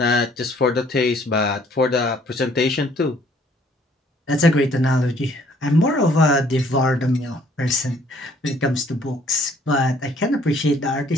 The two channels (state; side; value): normal; both; correlation 0.61